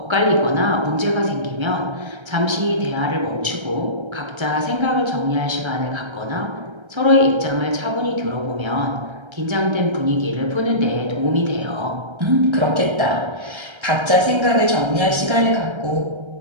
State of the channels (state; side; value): late; left; 1.3 ms